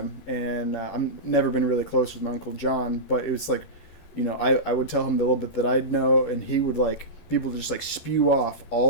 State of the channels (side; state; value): right; late; 12 ms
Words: and I've never been really close with my Uncle John, but it was like, I would tell him the little bit that I'd know, and he would like people to just like spew off